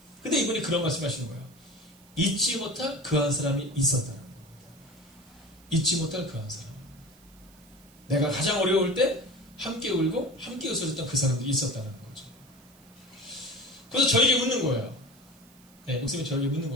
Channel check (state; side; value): noise; right; hiss, 27 dB below the sound